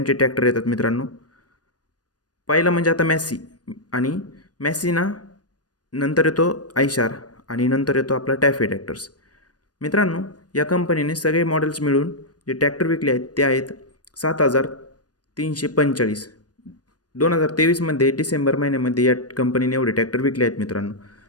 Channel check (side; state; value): right; late; 0.69 ms